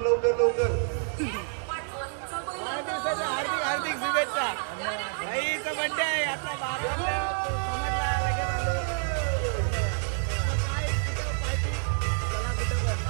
वाढदिवसाच्या हार्दिक शुभेच्छा. भाईचा बर्थडे आहे आता 12 वाजता, समजला लगेच आलो. काय कुठं पार्टी? चला कुठं पण.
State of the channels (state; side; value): silent; left; 59 dB below the other